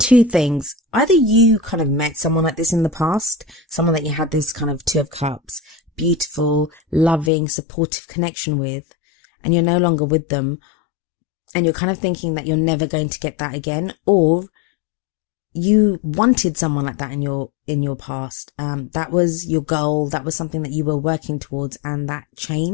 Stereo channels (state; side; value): drops out; right; at 7.3 s